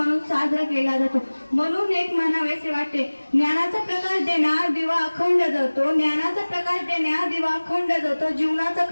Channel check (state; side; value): inverted; both; correlation -1.00